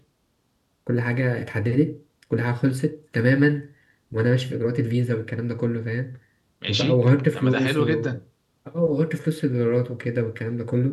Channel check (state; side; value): identical; both; correlation 1.00